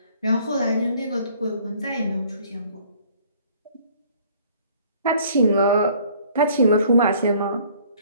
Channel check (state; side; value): inverted; both; correlation -0.56